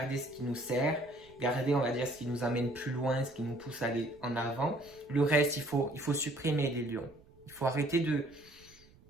ce qui nous sert, garder, on va dire, ce qui nous amène plus loin, ce qui nous pousse à aller en avant. Le reste, il faut supprimer, les lions. Il faut arrêter de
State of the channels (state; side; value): noise; right; rumble, 26 dB below the sound